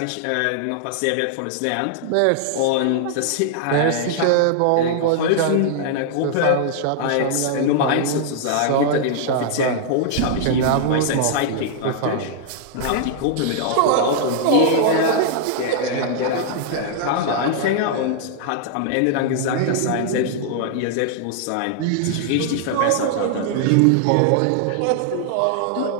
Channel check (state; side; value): different; both; correlation -0.01